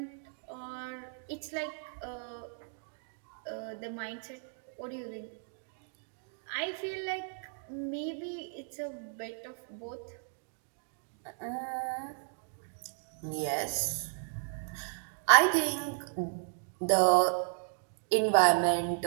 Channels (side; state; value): left; silent; 55 dB below the other